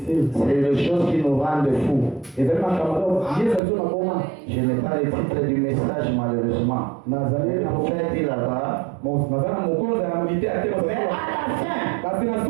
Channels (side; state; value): left; drops out; at 3.6 s